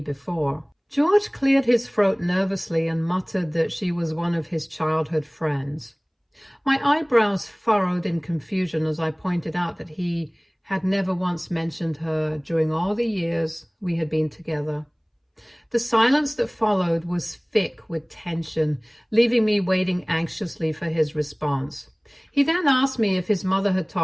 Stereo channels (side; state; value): both; identical; correlation 1.00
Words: before. George cleared his throat nervously and muttered that she was one of his childhood friends. My eyebrows furrowed in confusion as I pointed out that he had never once mentioned her during all the years we had been together. The silence that followed was thick with tension, leaving me waiting anxiously for his response. He then asked me if his mother had